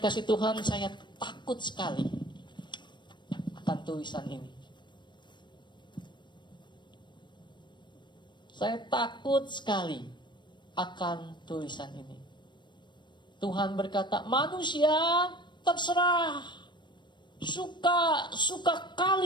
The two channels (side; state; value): right; late; 0.22 ms